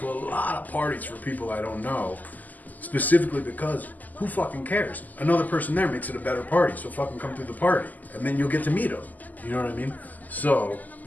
a lot of parties for people I don't know, specifically because who fucking cares? Another person there makes it a better party, so fucking come through the party. And then you'll get to meet them. You know what I mean? So,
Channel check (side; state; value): right; late; 0.081 ms